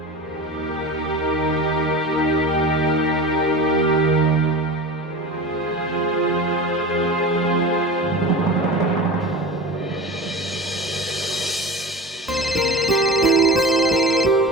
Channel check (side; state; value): both; normal; correlation 0.32